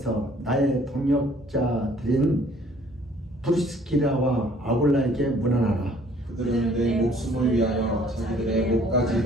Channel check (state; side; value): normal; both; correlation 0.57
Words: 나의 동역자들인 브리스키라와 아굴라에게 문안하라. 그들은 내 목숨을 위하여 자기들의